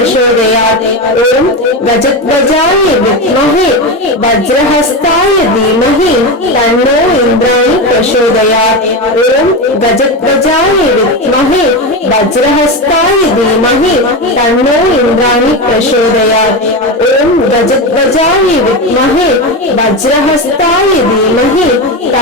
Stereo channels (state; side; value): normal; both; correlation 0.17